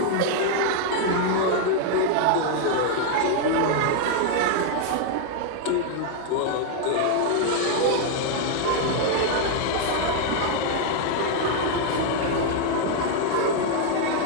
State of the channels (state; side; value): different; both; correlation 0.00